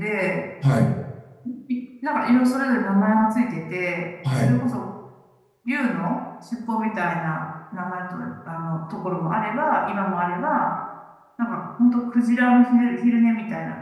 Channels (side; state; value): both; identical; correlation 1.00